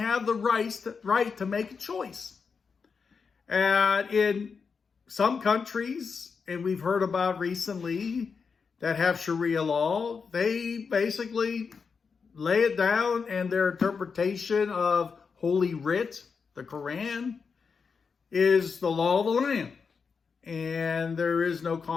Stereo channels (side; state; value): right; quieter; 5.5 dB